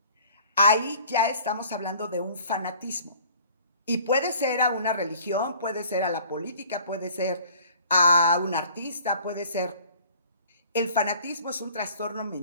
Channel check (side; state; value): both; inverted; correlation -0.51